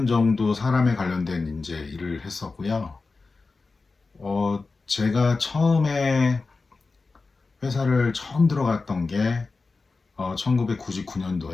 정도 사람에 관련된 이제 일을 했었고요. 제가 처음에 회사를 처음 들어갔던 게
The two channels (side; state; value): right; quieter; 4.0 dB